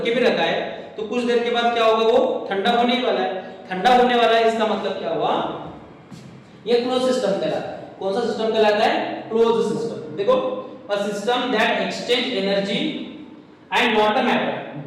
के भी रखा है, तो कुछ देर के बाद क्या होगा, वो ठंडा होने वाला है। ठंडा होने वाला है, इसका मतलब क्या हुआ? ये क्लोज सिस्टम कहलाता है। कौन सा सिस्टम कहलाता है? Closed system. देखो, a system that exchange energy and not a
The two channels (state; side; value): identical; both; correlation 1.00